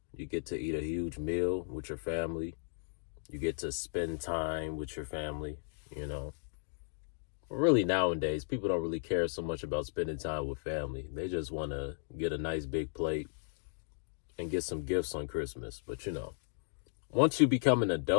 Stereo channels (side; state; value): right; silent; digital silence